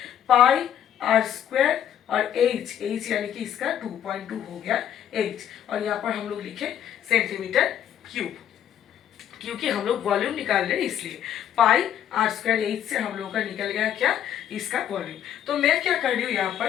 पाई आर स्क्वायर और एच यानी कि इसका 2.2 हो गया एच। और यहाँ पर हम लोग लिखे सेंटीमीटर क्यूब, क्योंकि हम लोग वॉल्यूम निकाल रहे हैं इसलिए। पाई आर स्क्वायर एच से हम लोग का निकल गया क्या, इसका वॉल्यूम। तो मैं क्या कर रही हूँ यहाँ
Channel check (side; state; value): right; quieter; 10.2 dB